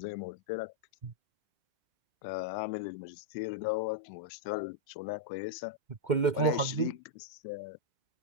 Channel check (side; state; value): left; late; 2.1 ms